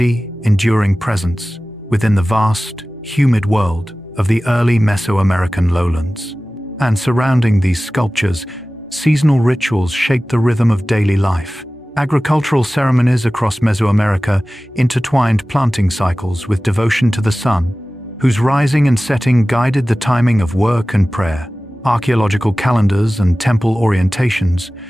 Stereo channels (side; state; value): both; normal; correlation 0.97